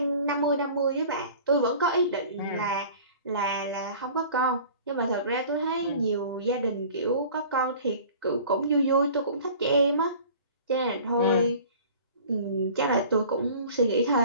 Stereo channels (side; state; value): both; inverted; correlation -0.45